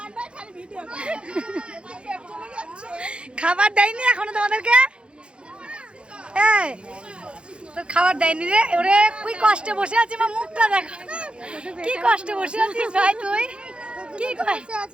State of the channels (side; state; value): left; late; 0.056 ms